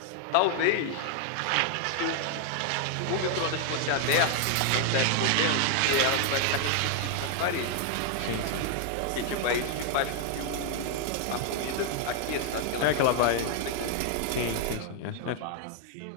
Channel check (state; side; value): different; both; correlation 0.00